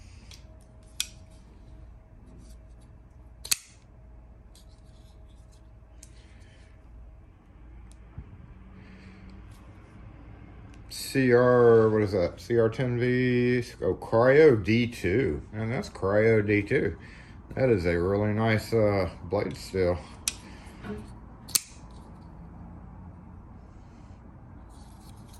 What is that? CR10V, oh, Cryo D2. And that's Cryo D2. That is a really nice blade steel.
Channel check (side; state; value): both; identical; correlation 1.00